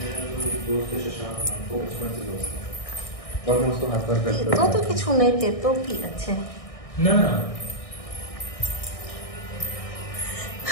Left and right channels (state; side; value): late; right; 1.6 ms